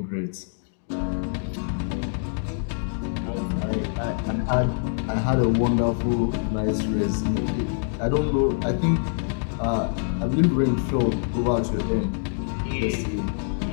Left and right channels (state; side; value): silent; right; digital silence